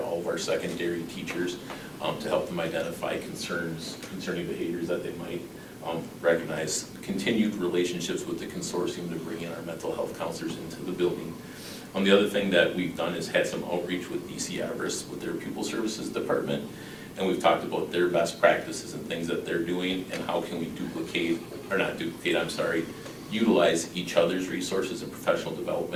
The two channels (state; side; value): identical; both; correlation 1.00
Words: of our secondary teachers to help them identify concerning behaviors that they might recognize. Continued relationships with the consortium to bring in our mental health counselors into the building. The other thing that we've done is had some outreach with DC Everest with their pupil services department, and we've talked about their best practices and things that they're doing and how can we utilize each other's resources and professional